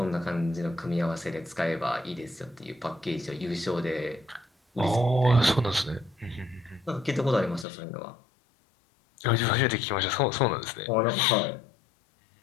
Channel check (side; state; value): right; drops out; at 7.7 s